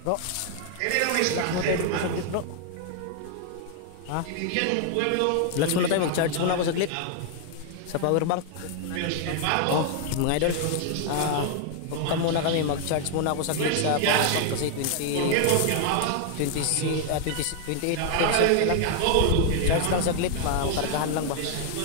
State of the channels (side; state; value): both; different; correlation 0.00